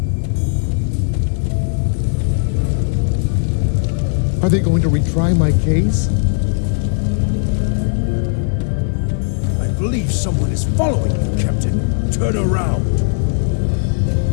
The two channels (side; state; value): right; silent; 55 dB below the other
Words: Are they going to retry my case? I believe someone is following you, Captain. Turn around.